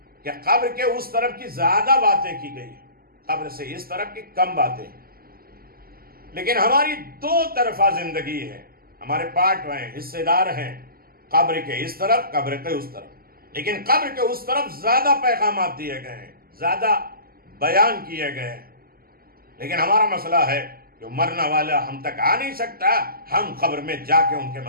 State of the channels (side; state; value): left; late; 0.43 ms